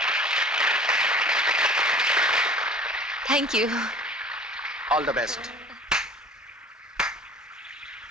Thank you. All the best.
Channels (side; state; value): both; normal; correlation 0.45